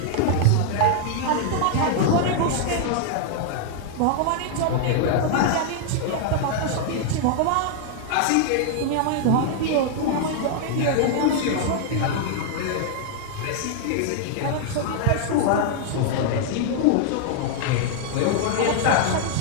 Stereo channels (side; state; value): both; different; correlation 0.00